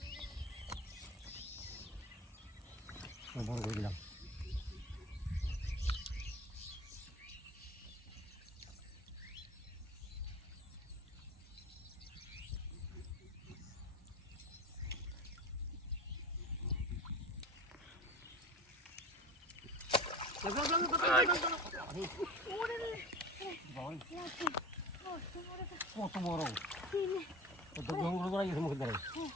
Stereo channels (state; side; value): normal; both; correlation 0.33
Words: বড় করে দিলাম। কত বড় জঙ্গল করা গেছে মুখের দ্বারা